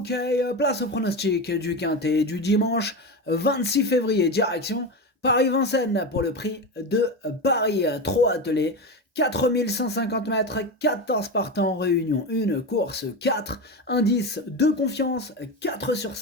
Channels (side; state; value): both; normal; correlation 0.20